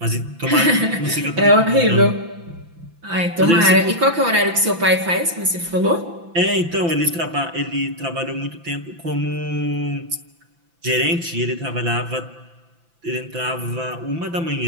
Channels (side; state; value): left; late; 5.9 ms